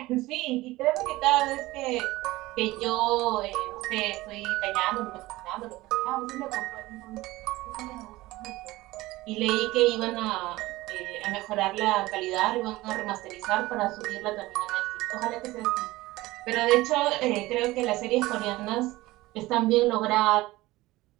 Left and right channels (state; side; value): quieter; left; 18.8 dB